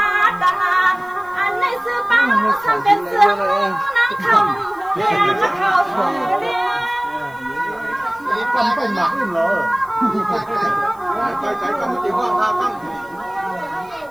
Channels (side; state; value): left; noise; hiss, 28 dB below the sound